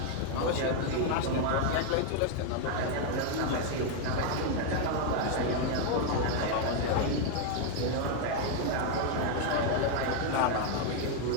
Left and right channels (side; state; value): both; different; correlation 0.01